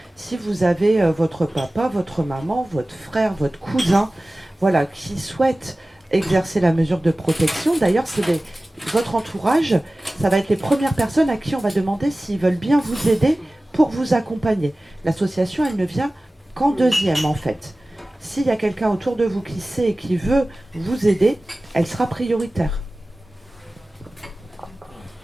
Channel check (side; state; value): both; normal; correlation 0.97